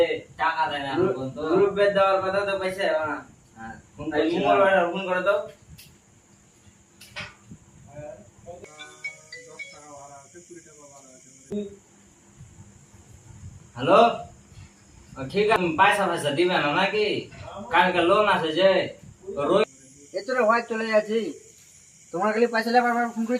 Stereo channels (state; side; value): identical; both; correlation 1.00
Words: টাকা দেয় না এখন তো। রবিবার দেওয়ার কথা তো পয়সা হবে না ফোন তাই মঙ্গলবার ফোন করে দাও হ্যালো ঠিক আছে পয়সা পয়সা দিবে না নাকি? কালকে লোন আছে যে এতটা হয় চলে যাচ্ছি তোমার খালি পয়সা লেবার ফোন করে